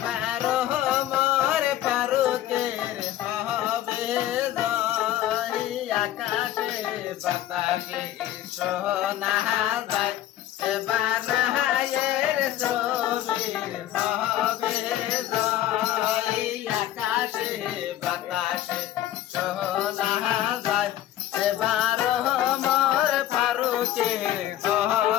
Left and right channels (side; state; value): right; quieter; 13.0 dB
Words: মোর ফারুকের হবে জয় আকাশে বাতাসে সোনা যায় এবার নাহায়ের ছবির হবে জয় আকাশে বাতাসে সোনা যায় এবার মোর ফারুকের